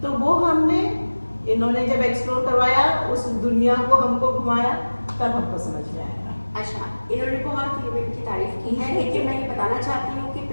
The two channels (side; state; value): both; inverted; correlation -1.00